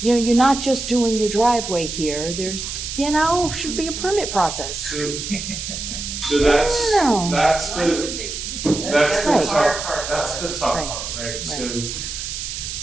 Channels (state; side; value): noise; right; hiss, 6 dB below the sound